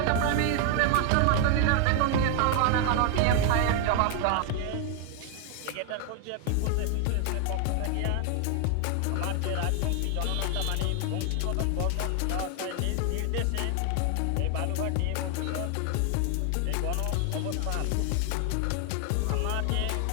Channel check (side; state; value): both; different; correlation 0.00